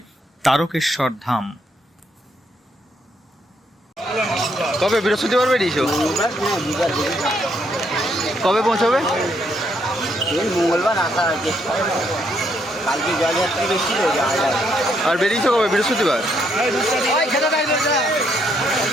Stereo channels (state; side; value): normal; both; correlation 0.73